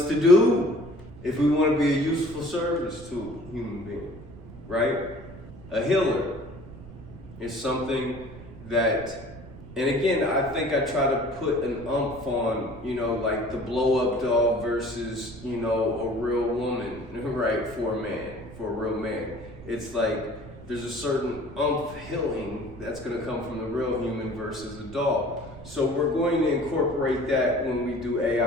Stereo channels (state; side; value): noise; right; rumble, 16 dB below the sound